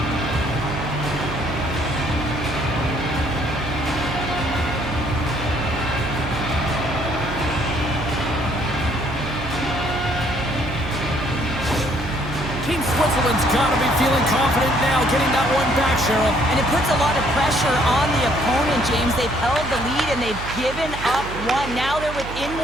Team Switzerland's got to be feeling confident now, getting that one back, Cheryl. And it puts a lot of pressure on the opponent, James. They've held the lead and they've given up 1. Now they're within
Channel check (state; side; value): noise; right; hum, 9 dB below the sound